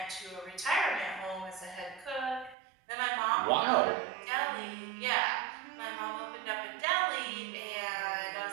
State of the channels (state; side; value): drops out; left; at 2.6 s